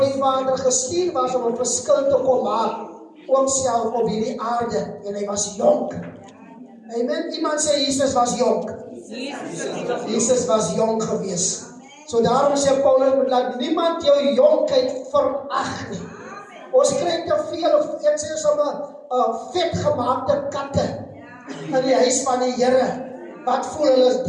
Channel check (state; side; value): identical; both; correlation 1.00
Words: die Vader gestuur was om 'n verskil te kom maak. Ook self op hierdie aarde. En hy was jonk. Amen. Iemand sê Jesus was jonk. Jesus was jonk gewees. So daarom sê Paulus, moet laat niemand jou jonkheid verag nie. Ons kry te veel, of ek sê sommer, vetgemaakte katte in die huis van die Here. Wat voel hulle is